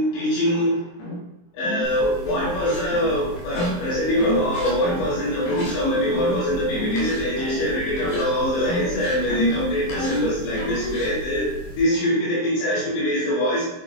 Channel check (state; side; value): late; right; 23 ms